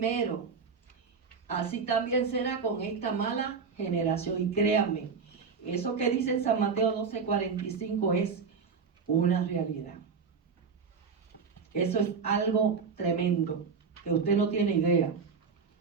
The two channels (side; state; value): left; quieter; 5.5 dB